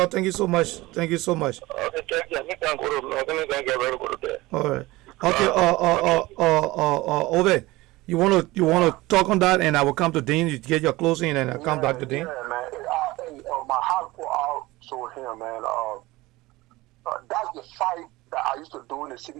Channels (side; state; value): left; quieter; 19.9 dB